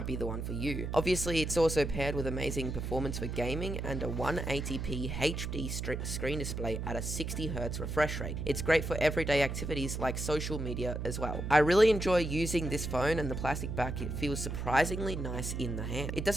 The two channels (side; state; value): right; noise; hum, 4 dB below the sound